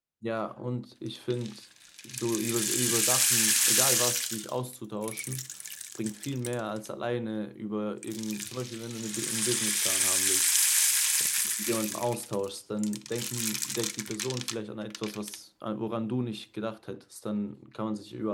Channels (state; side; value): identical; both; correlation 1.00